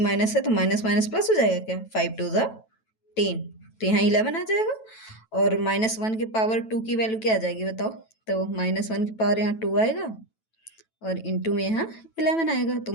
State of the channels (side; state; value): right; late; 9.1 ms